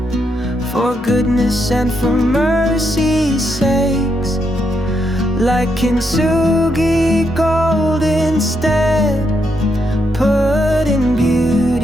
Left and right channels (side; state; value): both; normal; correlation 0.79